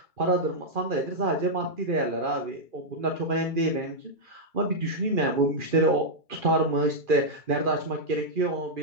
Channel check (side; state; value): left; late; 2.4 ms